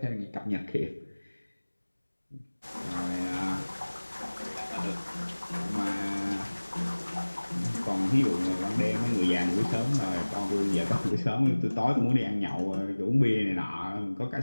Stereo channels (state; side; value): inverted; both; correlation -1.00